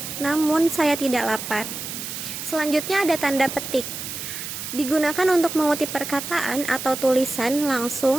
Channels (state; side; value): noise; right; hiss, 7 dB below the sound